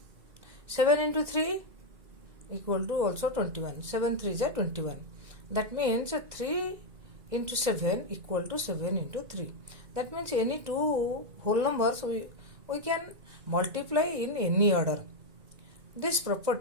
7 into 3 equal to also 21. 7 3 are 21. That means 3 into 7 equal to 7 into 3. That means any two whole numbers we can multiply in any order. This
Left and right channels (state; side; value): late; left; 2.0 ms